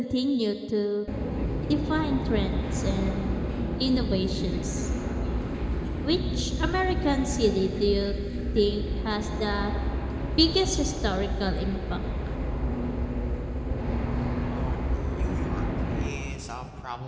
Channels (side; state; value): both; identical; correlation 1.00